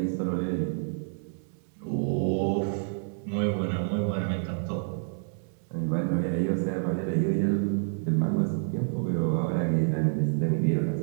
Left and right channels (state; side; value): silent; left; 59 dB below the other